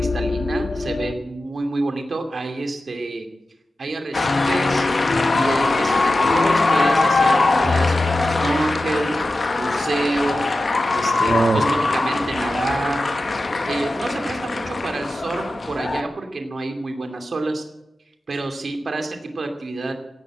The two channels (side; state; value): both; normal; correlation 0.93